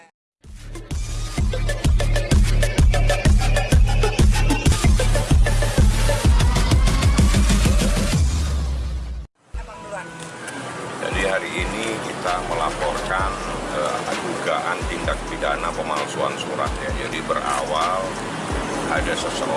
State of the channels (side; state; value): both; identical; correlation 1.00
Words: Jadi hari ini kita melaporkan dugaan tindak pidana pemalsuan surat ya. Jadi berawal ada